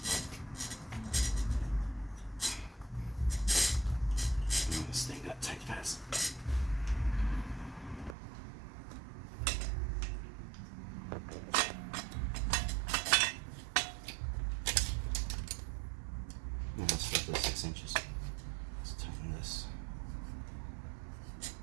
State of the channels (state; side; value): drops out; left; at 8.2 s